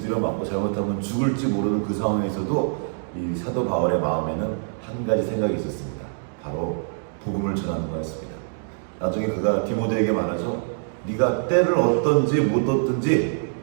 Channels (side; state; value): left; silent; digital silence